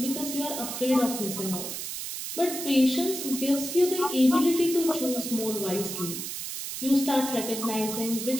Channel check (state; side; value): noise; right; hiss, 6 dB below the sound